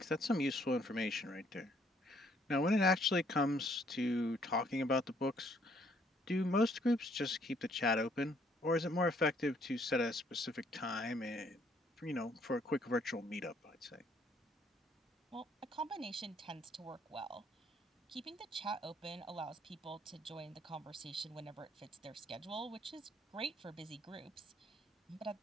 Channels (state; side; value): normal; both; correlation 0.65